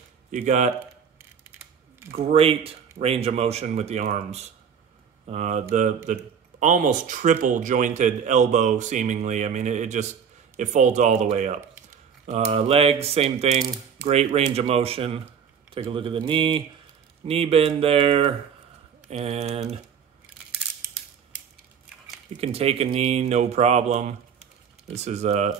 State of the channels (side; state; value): left; quieter; 7.3 dB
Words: You got great range of motion with the arms. The almost triple jointed elbow, seemingly. I mean, it folds all the way up. Legs, same thing. Great range of motion. Take a look at the knee bend there, and you can take a knee, no problem. This is